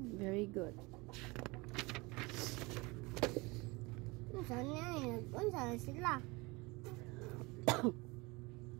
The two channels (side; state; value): left; quieter; 24.7 dB